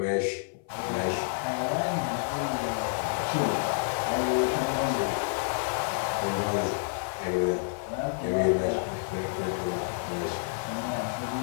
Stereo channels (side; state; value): right; silent; 56 dB below the other